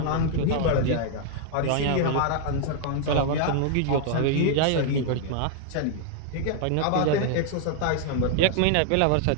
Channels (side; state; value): both; different; correlation 0.00